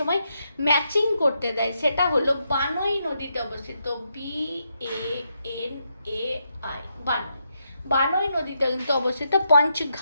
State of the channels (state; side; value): inverted; both; correlation -0.81